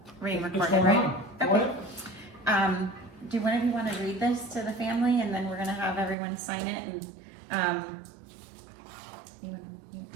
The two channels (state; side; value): drops out; left; at 6.2 s